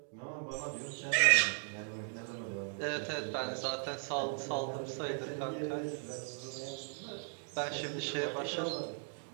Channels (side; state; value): left; silent; 53 dB below the other